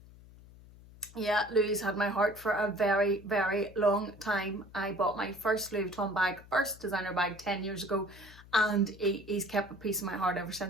Yeah, Louis had my heart for a very, very long time. I bought my first Louis Vuitton bag, first designer bag, 10 years ago, and he's kept a piece of my heart ever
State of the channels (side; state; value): left; noise; hum, 21 dB below the sound